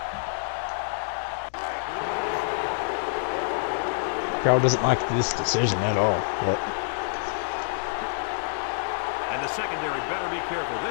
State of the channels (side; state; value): right; silent; digital silence